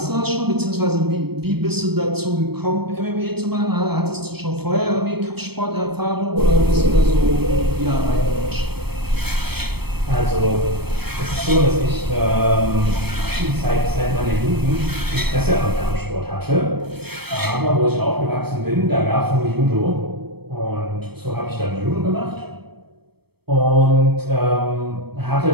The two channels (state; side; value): late; left; 0.97 ms